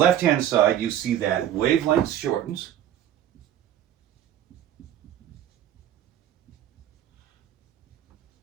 side, you see that wavelength shortens.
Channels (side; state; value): left; quieter; 11.2 dB